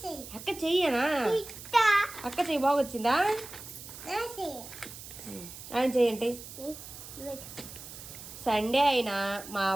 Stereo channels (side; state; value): right; noise; hiss, 13 dB below the sound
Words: అక్క చెయ్యనా? అక్క చెయ్యి బాగొచ్చిందా? ఆయన చెయ్యండి. సండే అయినా మా